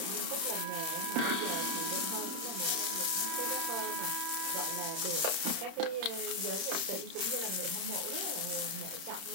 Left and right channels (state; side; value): late; left; 31 ms